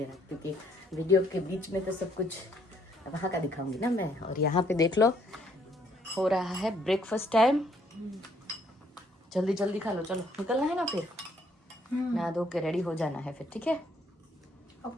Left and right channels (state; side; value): normal; both; correlation 0.67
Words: क्योंकि वीडियो के बीच में तो सब कुछ वहाँ का दिखाऊंगी ना मैं। और यहाँ पे देख लो हो रहा है ब्रेकफास्ट टाइम। जल्दी जल्दी खा लो, चलो निकलना है ना फिर। नहा धो के रेडी हो जाना है फिर, ठीक है?